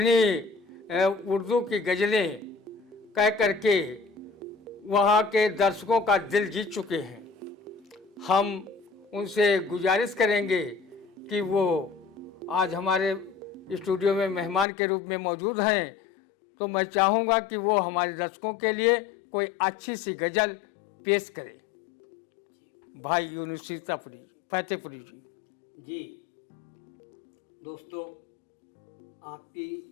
उर्दू की गज़लें कह करके वहाँ के दर्शकों का दिल जीत चुके हैं। हम उनसे गुजारिश करेंगे कि वो आज हमारे स्टूडियो में मेहमान के रूप में मौजूद हैं, तो मैं चाहूँगा कि वो हमारे दर्शकों के लिए कोई अच्छी सी गज़ल पेश करें। जी भाई यूनुस फतेहपुरी जी दोस्तों,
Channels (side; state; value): right; drops out; at 14.7 s